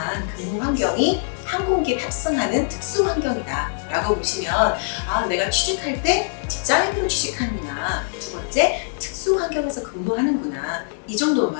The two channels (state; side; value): silent; right; digital silence